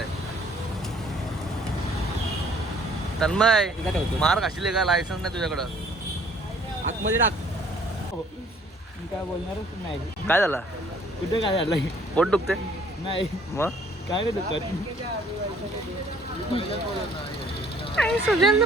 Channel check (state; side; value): normal; both; correlation 0.59